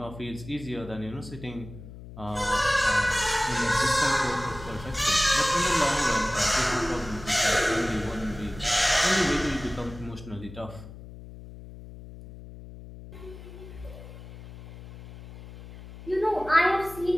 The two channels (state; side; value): noise; left; hum, 15 dB below the sound